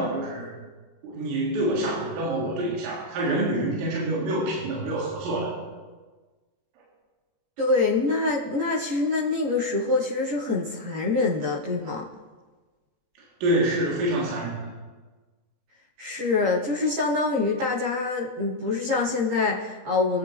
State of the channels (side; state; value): left; late; 16 ms